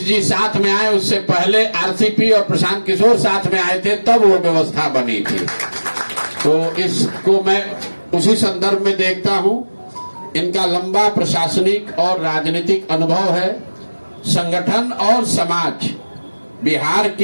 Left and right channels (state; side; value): inverted; both; correlation -1.00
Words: जी साथ में आए। उससे पहले आरसीपी और प्रशांत किशोर साथ में आए थे, तब वो व्यवस्था बनी थी। तो इसको मैं उसी संदर्भ में देखता हूं, इनका लंबा प्रशासनिक और राजनीतिक अनुभव है। संगठन और समाज, बिहार